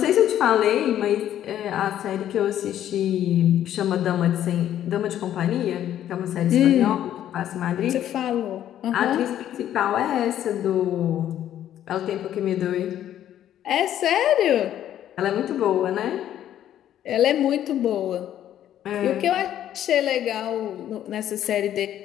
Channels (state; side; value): quieter; right; 11.3 dB